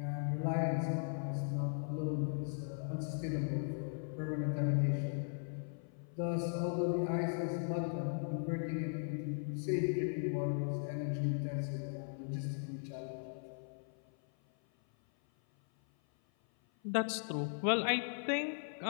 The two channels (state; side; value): silent; right; 52 dB below the other